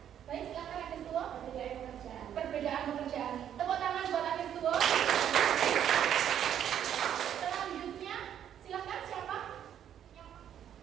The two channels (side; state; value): left; quieter; 9.8 dB